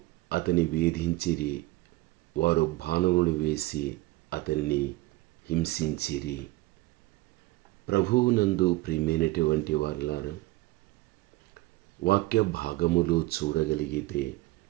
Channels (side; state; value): left; quieter; 19.3 dB